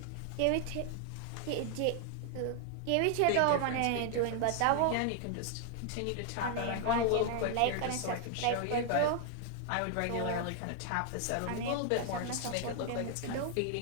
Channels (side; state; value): both; different; correlation 0.00